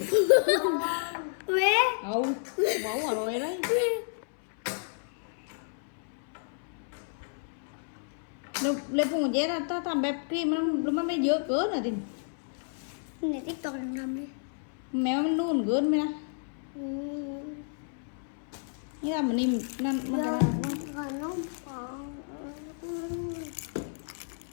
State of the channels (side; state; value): right; silent; 57 dB below the other